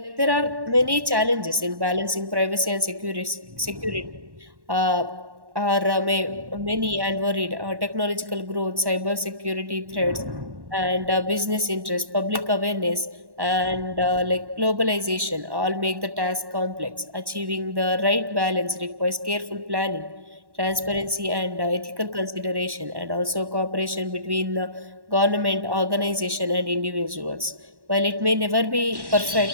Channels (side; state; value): left; late; 1.1 ms